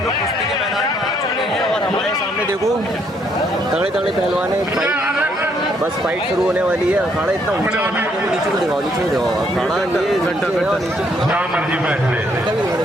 लोग कुश्ती के मैदान में आ चुके हैं और हमारे सामने देखो तगड़े तगड़े पहलवान है। बस फाइट शुरू होने वाली है। अखाड़ा इतना ऊंचा बना है कि नीचे को दिखाओ, नीचे को दिखाओ। अखाड़ा ये नीचे है और नीचे जहाँ मर्जी बैठ ले।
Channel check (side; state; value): both; normal; correlation 0.70